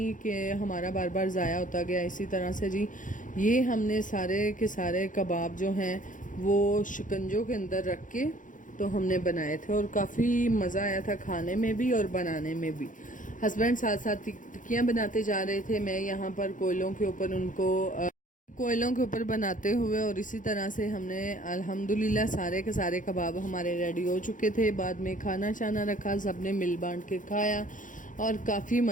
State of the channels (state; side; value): late; right; 0.38 ms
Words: कि हमारा बार बार ज़ाया होता गया। इसी तरह से जी ये हमने सारे के सारे कबाब जो हैं वो शिकंजों के अंदर रख के तो हमने बनाए थे और काफ़ी मज़ा आया था खाने में भी और बनाने में भी। हस्बैंड साथ साथ टिक्कियाँ बनाते जा रहे थे, मैं यहाँ पर कोयलों के ऊपर बनाते हुए। और इसी तरह से हमने अल्हम्दुलिल्लाह सारे के सारे कबाब हमारे रेडी हो चुके थे। बाद में खाना शाना रखा, सबने मिल बांट के खाया और काफ़ी